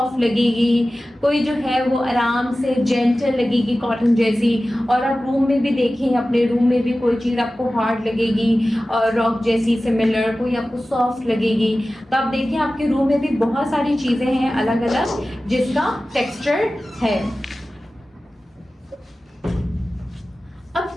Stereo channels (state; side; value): normal; both; correlation 0.96